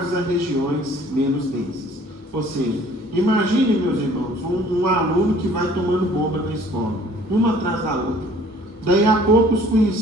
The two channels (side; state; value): both; normal; correlation 0.54